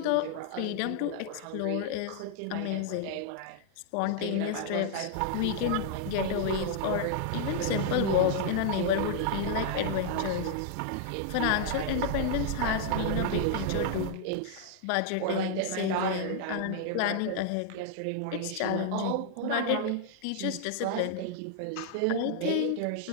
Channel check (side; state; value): both; different; correlation -0.01